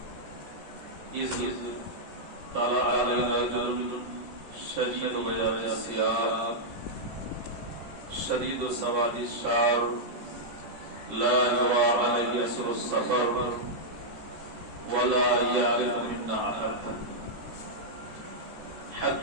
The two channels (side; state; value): left; late; 14 ms